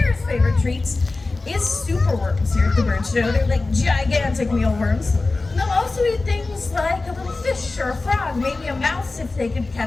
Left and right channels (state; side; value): quieter; right; 3.4 dB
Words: favorite treats is superworms here at the Birdshow. They're like gigantic mealworms. And they'll also eat things like a little fish or a frog, maybe a mouse if they could